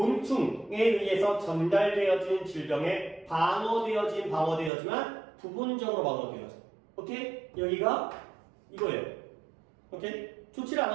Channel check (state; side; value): drops out; left; at 4.7 s